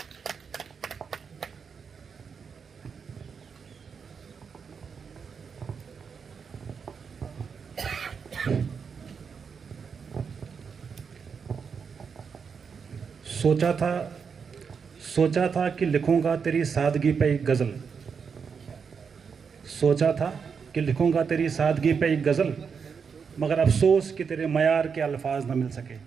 सोचा था कि लिखूंगा तेरी सादगी पे एक गज़ल। सोचा था कि लिखूंगा तेरी सादगी पे एक गज़ल, मगर अफसोस कि तेरे मयार के अल्फाज न मिल सके।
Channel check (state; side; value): quieter; left; 6.1 dB